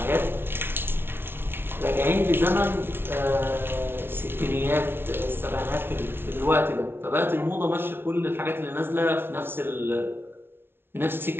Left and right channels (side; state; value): left; late; 0.11 ms